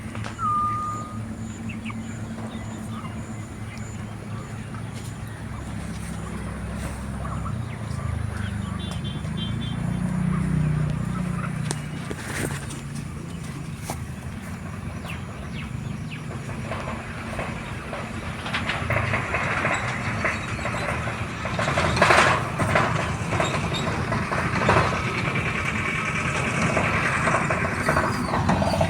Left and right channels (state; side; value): identical; both; correlation 1.00